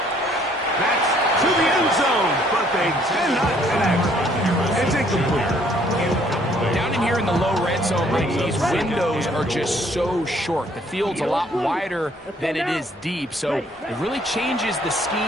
That's to the end zone, but they cannot connect. It's incomplete. Down in here in the low red zone, Mike, these windows are just so short. The field's a lot wider than it is deep, so it really changes the scheme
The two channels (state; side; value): normal; both; correlation 0.63